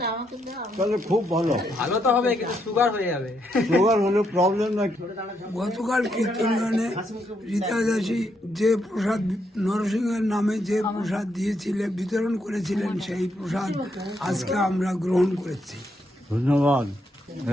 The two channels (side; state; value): both; normal; correlation 0.77